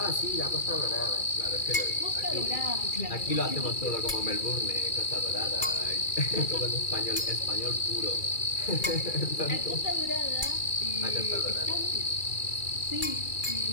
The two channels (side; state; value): right; late; 2.3 ms